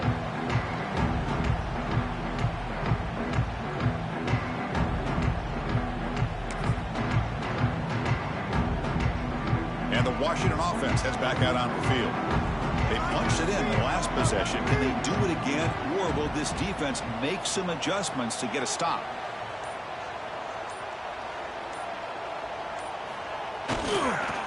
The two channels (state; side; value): identical; both; correlation 1.00